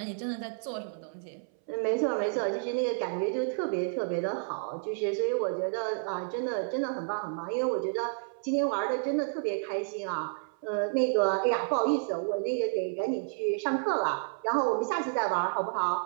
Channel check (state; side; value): silent; left; 57 dB below the other